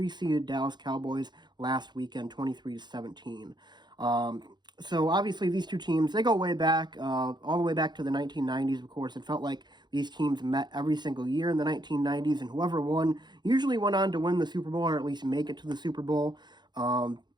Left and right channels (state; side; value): late; left; 0.21 ms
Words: Dallas Cowboys last weekend, 23-17. So obviously these two teams, they go way back, all the way back to the 1990s, of course. It felt like these teams met every single year in the 1990s, and whoever won usually went on to win the Super Bowl, or at least make it to the Super Bowl.